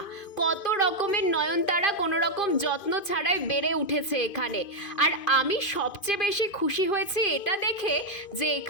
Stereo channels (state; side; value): late; right; 2.5 ms